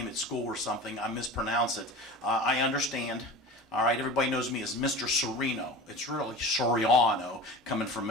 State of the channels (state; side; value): normal; both; correlation 0.34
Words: at school or something, I mispronounce it. I understand. All right, everybody knows me as Mr. Serino. It's really Soriano, coming